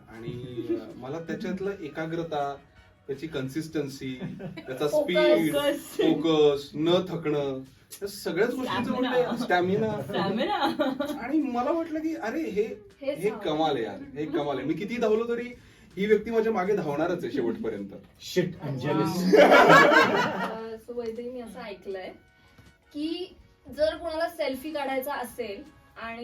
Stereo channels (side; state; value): both; identical; correlation 1.00